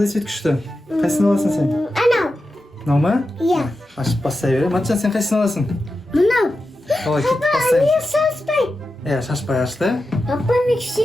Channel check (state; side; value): normal; both; correlation 0.91